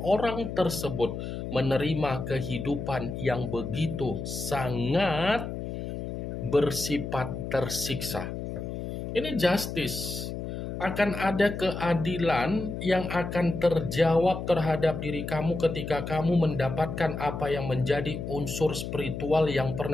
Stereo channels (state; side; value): noise; left; hum, 6 dB below the sound